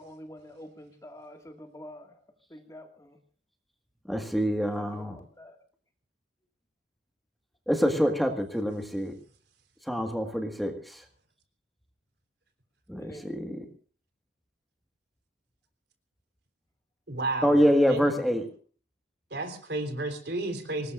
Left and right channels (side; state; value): both; normal; correlation 0.83